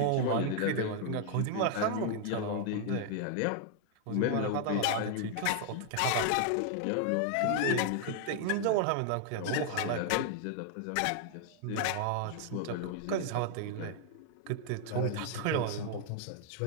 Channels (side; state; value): both; different; correlation 0.00